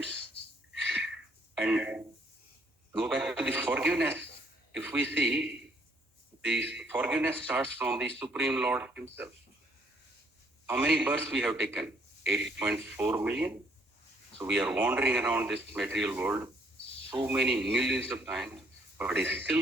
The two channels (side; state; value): both; normal; correlation 0.66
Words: And go back to the forgiveness. If we see, the forgiveness starts from the Supreme Lord Himself. How many births we have taken? 8.4 million. So we are wandering around this material world so many millions of times, but He's